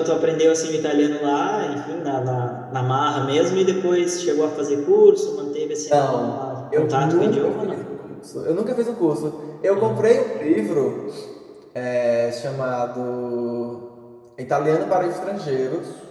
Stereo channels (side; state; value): both; identical; correlation 1.00